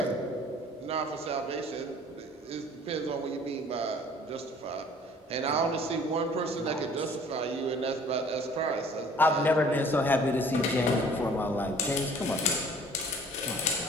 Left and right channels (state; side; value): normal; both; correlation 0.52